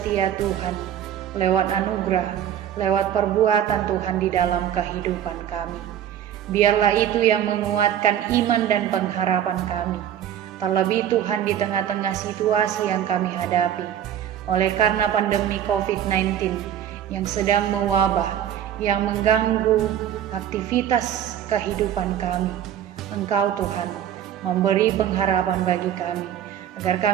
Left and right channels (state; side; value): quieter; left; 10.2 dB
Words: Tuhan, lewat anugerah, lewat perbuatan Tuhan di dalam kehidupan kami. Biarlah itu yang menguatkan iman dan pengharapan kami, terlebih Tuhan di tengah-tengah situasi yang kami hadapi, oleh karena pandemi COVID-19 yang sedang mewabah, yang mengganggu aktivitas kehidupan kami. Engkau Tuhan memberi pengharapan bagi kami, agar